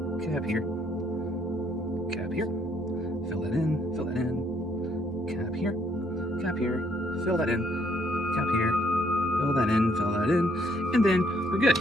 Cap here. Cap here. Fill that in. Fill that in. Cap here. Cap here. Fill that in. Cap here. Fill that in. Fill that in. And then we're good.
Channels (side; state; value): both; normal; correlation 0.68